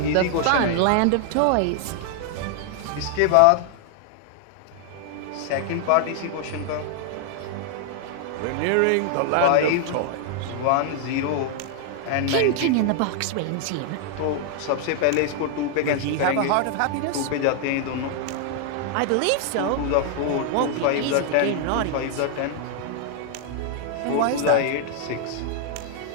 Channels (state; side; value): different; both; correlation 0.00